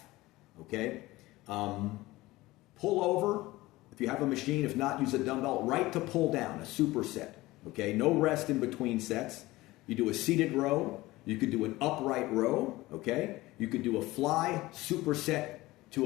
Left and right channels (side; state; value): right; quieter; 19.0 dB